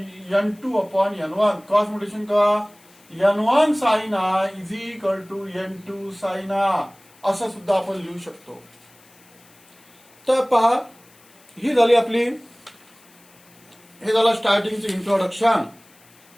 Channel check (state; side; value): noise; left; hiss, 28 dB below the sound